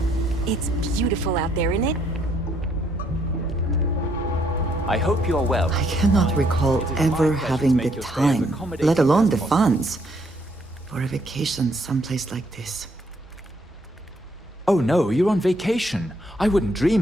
It's beautiful out there, isn't it? I hope you are well. I cannot recall ever having the time, let alone the funds, for a vacation someplace like this. Oh no, you're on vacation. I wouldn't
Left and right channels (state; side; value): normal; both; correlation 0.70